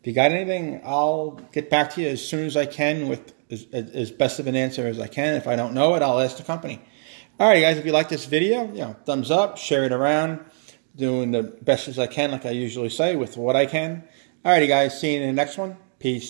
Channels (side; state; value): left; silent; digital silence